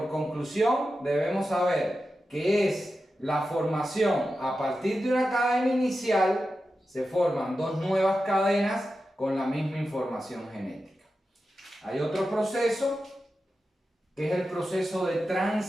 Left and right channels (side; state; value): both; normal; correlation 0.91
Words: conclusión, debemos saber que es la formación a partir de una cadena inicial, se forman dos nuevas cadenas con la misma información genética. Hay otro proceso que es el proceso de